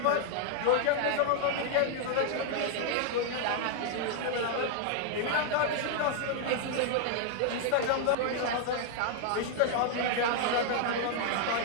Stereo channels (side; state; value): both; different; correlation 0.00